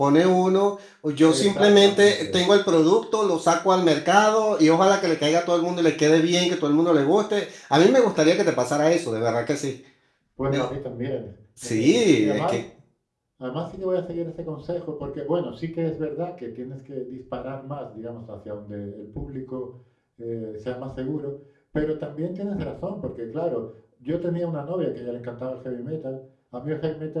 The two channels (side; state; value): both; identical; correlation 1.00